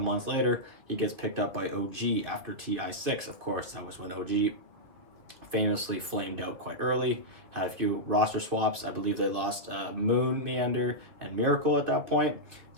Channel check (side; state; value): left; late; 2.7 ms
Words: later he gets picked up by OG after TI 6. Of course, that was when OG famously flamed out quite early, had a few roster swaps. I believe they lost Moon, Meander, and Miracle at that point,